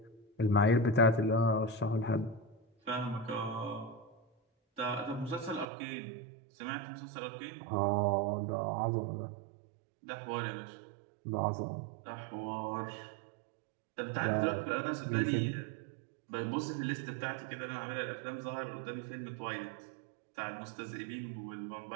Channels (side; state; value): left; drops out; at 5.7 s